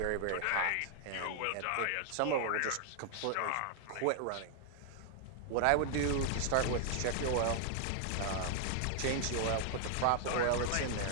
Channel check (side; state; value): both; different; correlation 0.00